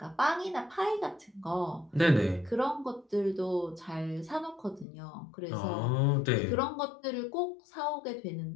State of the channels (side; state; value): right; drops out; at 4.9 s